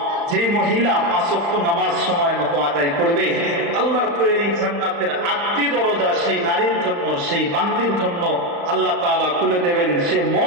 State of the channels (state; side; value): late; left; 35 ms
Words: যে মহিলা 5 ওয়াক্ত নামাজ সময় মতো আদায় করবে, আল্লাহর তৈরি জান্নাতের 8টি দরজা সেই নারীর জন্য, সেই বান্দির জন্য আল্লাহ তাআলা খুলে দেবেন। সে